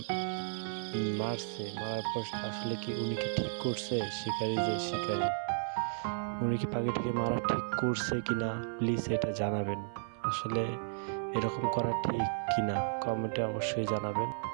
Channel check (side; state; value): left; silent; 55 dB below the other